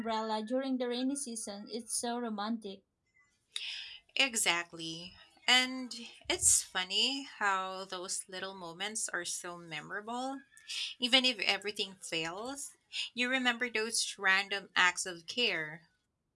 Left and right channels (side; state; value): both; identical; correlation 1.00